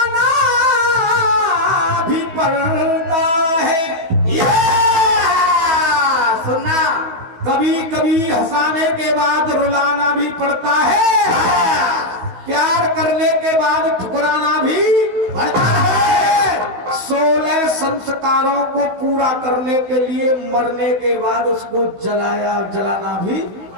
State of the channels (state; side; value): late; left; 15 ms